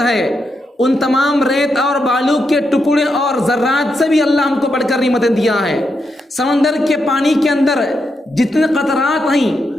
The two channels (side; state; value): both; normal; correlation 0.83